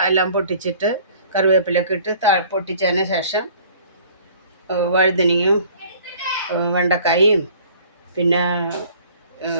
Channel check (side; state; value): both; inverted; correlation -0.52